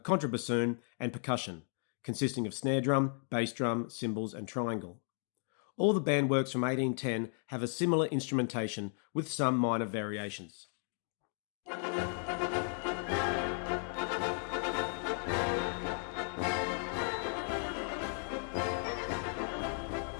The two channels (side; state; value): right; silent; 54 dB below the other